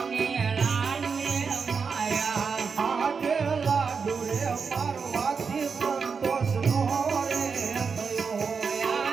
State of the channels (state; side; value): quieter; left; 5.5 dB